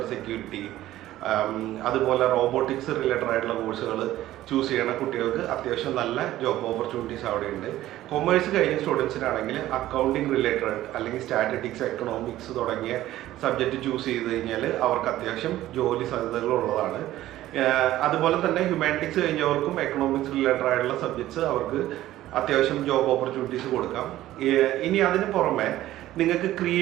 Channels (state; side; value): quieter; left; 14.6 dB